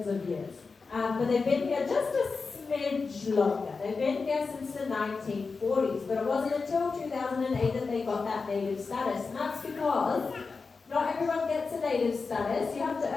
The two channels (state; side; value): quieter; right; 4.5 dB